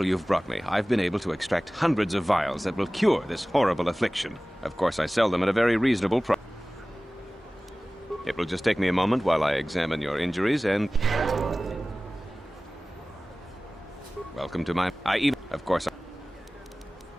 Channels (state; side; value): normal; both; correlation 0.98